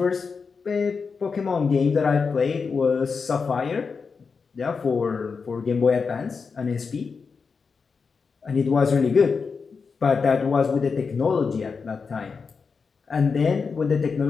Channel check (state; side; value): quieter; right; 5.2 dB